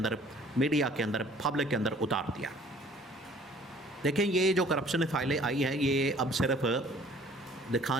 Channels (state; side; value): normal; both; correlation 0.54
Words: मीडिया के अंदर, पब्लिक के अंदर उतार दिया। देखें, ये जो करप्शन फ़ाइलें आई हैं ये अब सिर्फ